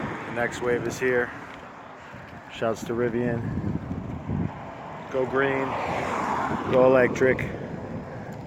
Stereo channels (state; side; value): identical; both; correlation 1.00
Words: The next wave is here. Shouts to Rivian. Go green, go electric.